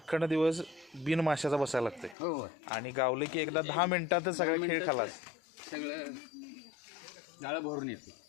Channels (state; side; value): drops out; right; at 2.1 s